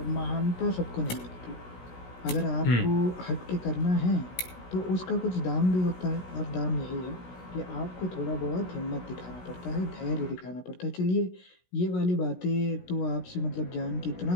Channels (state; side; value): late; right; 16 ms